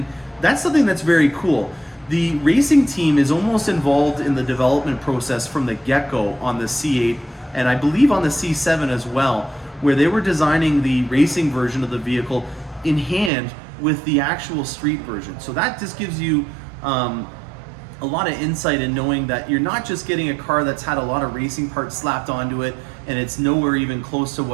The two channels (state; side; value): drops out; left; at 13.3 s